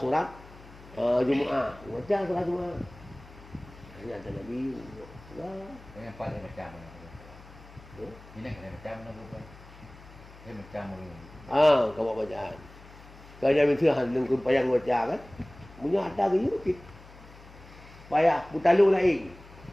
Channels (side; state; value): left; noise; hum, 20 dB below the sound